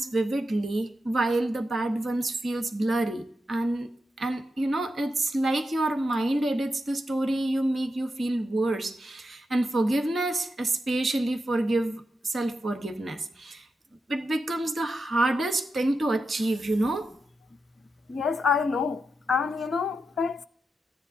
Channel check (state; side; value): normal; both; correlation 0.87